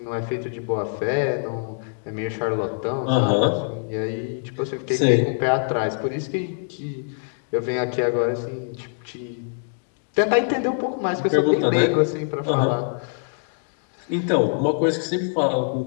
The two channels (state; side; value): silent; right; digital silence